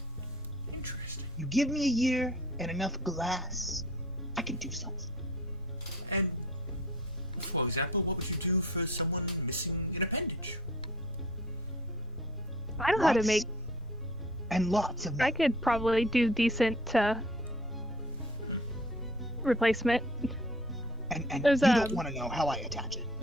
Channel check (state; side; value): normal; both; correlation 0.48